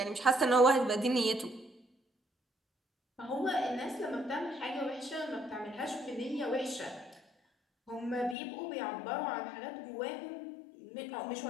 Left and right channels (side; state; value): right; drops out; at 8.3 s